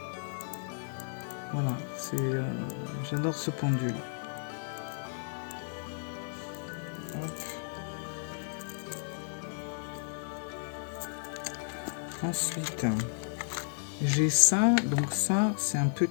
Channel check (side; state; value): right; silent; 56 dB below the other